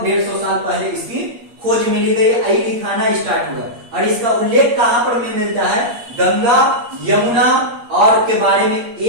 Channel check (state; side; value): late; left; 8.5 ms